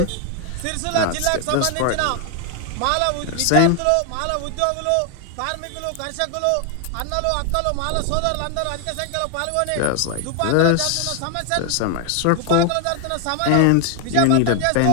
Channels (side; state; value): both; different; correlation 0.01